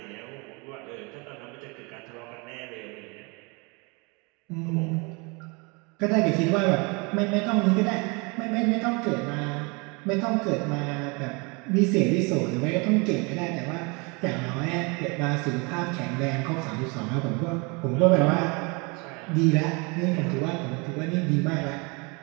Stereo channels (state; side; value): quieter; left; 29.7 dB